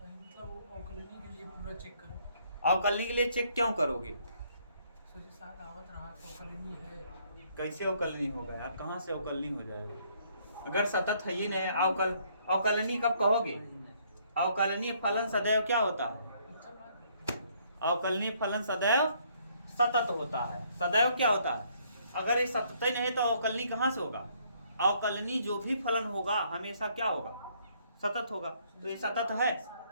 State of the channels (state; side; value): inverted; both; correlation -0.67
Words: के लिए पूरा चेक करो। अवकलनीय के लिए चेक क्यों करोगे? कैसे अवकलनीय होगा यार? कहाँ से अवकलनीय हो जाएगा? अगर सतत है ही नहीं, अवकलनीय कब कहोगे? अवकलनीय फलन सदैव क्या होता है? अवकलनीय फलन सदैव सतत होता है। सदैव क्या होता है? अगर ये सतत ही नहीं तो अवकलनीय कहाँ से होगा? अवकलनीय जो भी फलन होगा हमेशा क्या होगा? सतत होगा। तो ये सतत है?